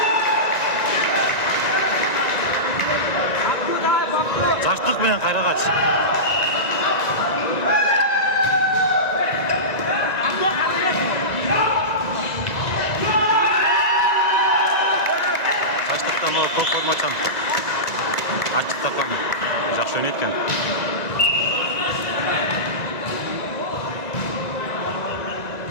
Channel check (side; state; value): right; late; 1.9 ms